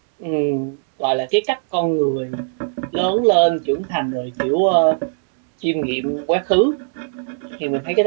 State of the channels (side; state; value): left; silent; digital silence